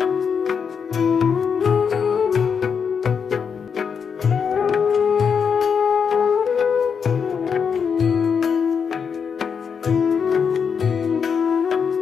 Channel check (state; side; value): quieter; right; 6.5 dB